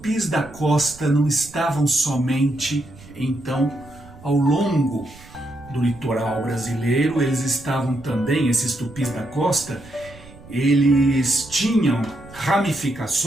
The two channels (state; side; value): noise; right; rumble, 21 dB below the sound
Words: da costa não estavam somente, então, ao longo do litoral brasileiro, eles estavam também, esses tupis da costa, eles tinham